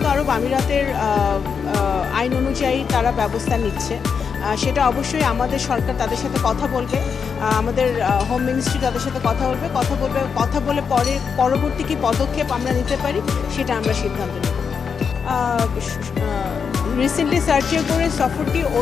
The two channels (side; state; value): right; quieter; 6.2 dB